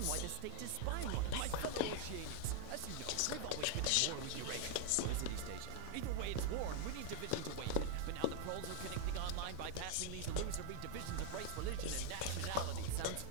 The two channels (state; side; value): different; both; correlation 0.00